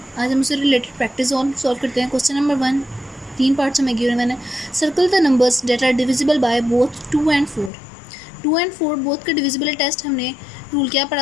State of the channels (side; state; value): right; drops out; at 7.7 s